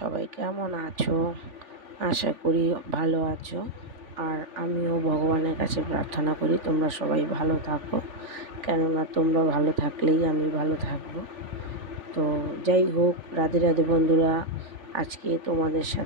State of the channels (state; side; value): late; left; 3.4 ms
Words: কেমন আছো? আশা করি ভালো আছো। আর আমিও ভগবানের কাছে প্রার্থনা করি তোমরা সবাই ভালো থাকো, কেননা তোমরা ভালো থাকলেই আমি ভালো থাকবো। তো যাই হোক, রাধে রাধে বন্ধুরা, আজকে তোমাদের